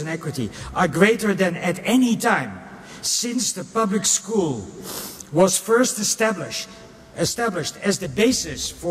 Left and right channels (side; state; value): both; identical; correlation 1.00